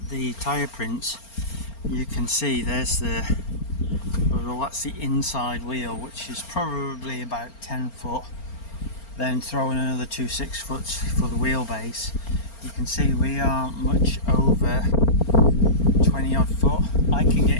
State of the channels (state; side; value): late; right; 4.4 ms